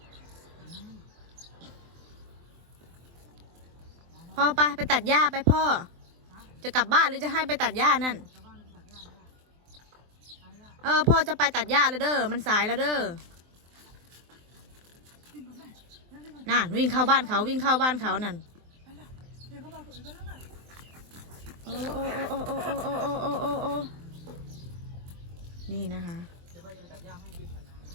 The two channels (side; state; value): left; late; 23 ms